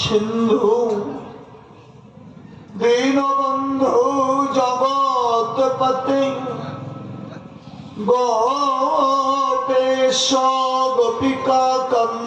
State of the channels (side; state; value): both; identical; correlation 1.00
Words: দীনবন্ধু জগৎপতে গোপেশ গোপিকা